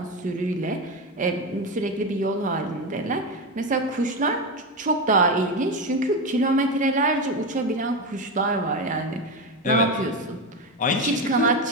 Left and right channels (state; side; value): normal; both; correlation 0.16